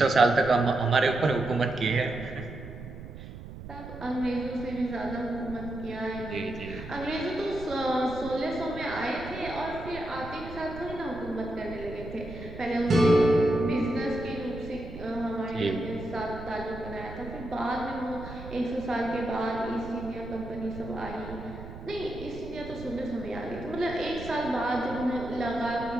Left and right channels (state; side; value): noise; right; rumble, 12 dB below the sound